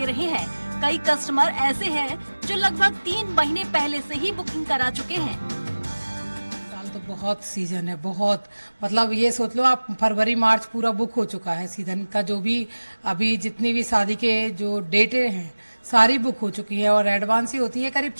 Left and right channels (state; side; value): inverted; both; correlation -1.00